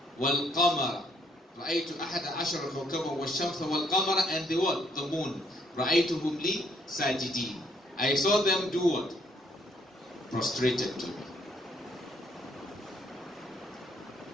wal-qamara. رأيت أحد عشر كوكبا والشمس والقمر, and the what? The moon. رأيتهم لي ساجدين. I saw them do what? Prostrated to me.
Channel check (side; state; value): both; normal; correlation 0.67